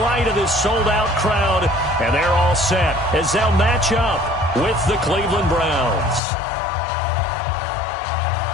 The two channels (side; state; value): right; drops out; at 6.2 s